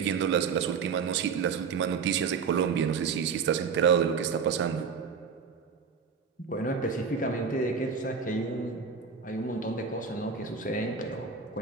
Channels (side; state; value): left; quieter; 5.8 dB